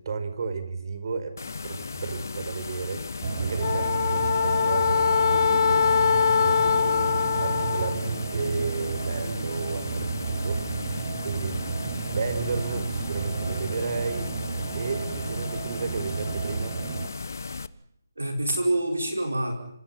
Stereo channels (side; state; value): both; inverted; correlation -0.80